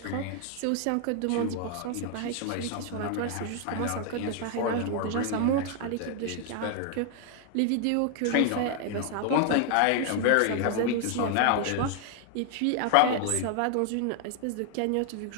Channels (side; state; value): both; different; correlation 0.00